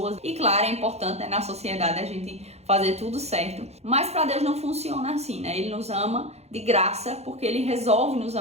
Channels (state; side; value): late; left; 0.31 ms